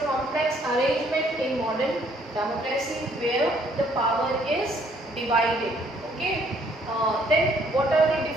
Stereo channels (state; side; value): normal; both; correlation 0.64